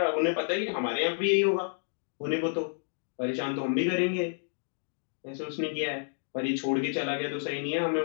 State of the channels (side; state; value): right; silent; digital silence